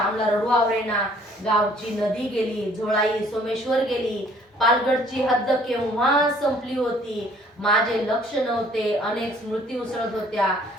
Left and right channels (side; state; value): both; normal; correlation 0.58